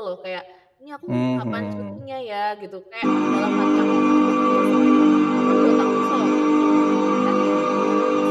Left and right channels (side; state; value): both; identical; correlation 1.00